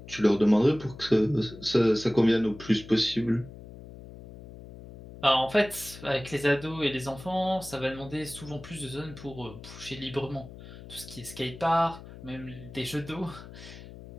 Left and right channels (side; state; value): left; noise; hum, 16 dB below the sound